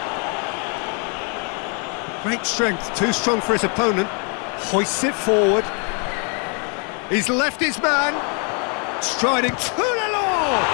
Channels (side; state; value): right; quieter; 38.0 dB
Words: Great strength, too strong for his opponent. Hoists it forward. He's left his man. Striding to the law.